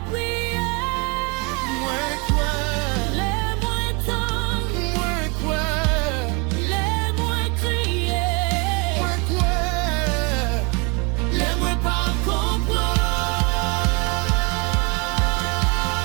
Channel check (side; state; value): left; quieter; 30.7 dB